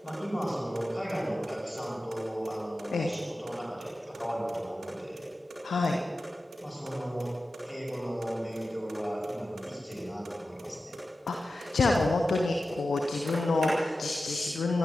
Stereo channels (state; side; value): normal; both; correlation 0.93